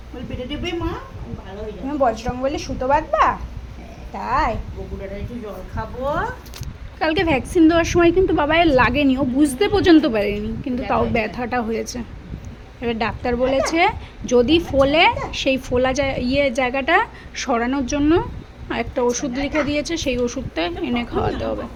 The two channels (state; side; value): identical; both; correlation 1.00